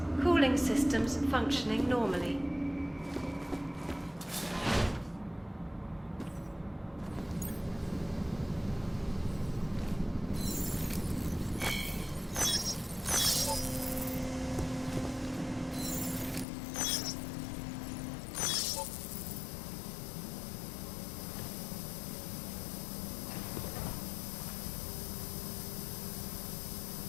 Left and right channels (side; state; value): right; drops out; at 16.4 s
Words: Cooling systems functioning normally.